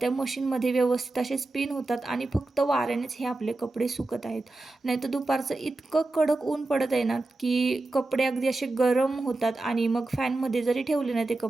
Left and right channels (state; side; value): quieter; left; 3.0 dB